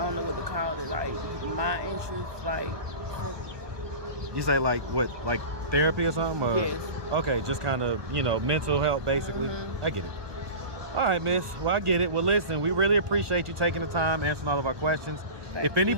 know what to call it. Like my interest, like. You say like what, like therapy or something? Or? Yes. Okay, just kind of, mental health basically. I get it. All right, miss. Well, I get it. Well, listen, we really appreciate you taking the time, answering all of our questions. If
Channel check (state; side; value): late; left; 1.2 ms